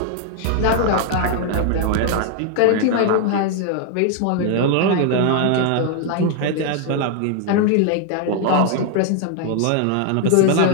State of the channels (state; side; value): different; both; correlation 0.00